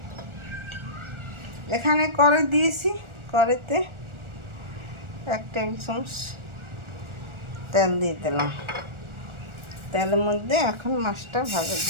এখানে কড়াই দিয়েছি, কড়াইতে 1 টেবিল চামচ তেল দিয়ে দিলাম। তেলের মধ্যে এখন মাছটা ভাজা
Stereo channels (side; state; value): left; late; 1.4 ms